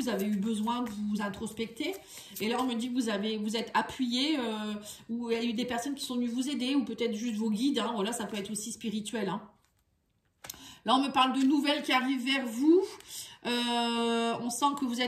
avez eu besoin de vous introspecter. Et là, on me dit que vous êtes appuyé, ou il y a eu des personnes qui sont venues vous aider, ou peut-être juste vos guides. Hein, voilà, ça peut être aussi spirituel. Hein. Là, on me parle de nouvelles qui arrivent vers vous. On sent que vous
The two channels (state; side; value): identical; both; correlation 1.00